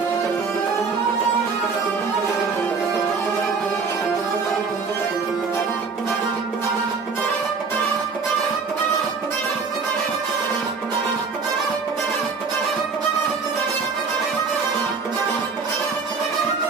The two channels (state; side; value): quieter; left; 4.9 dB